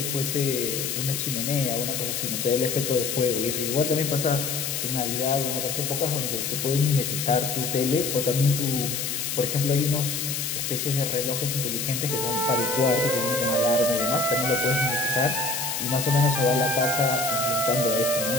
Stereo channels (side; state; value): left; noise; hiss, 2 dB below the sound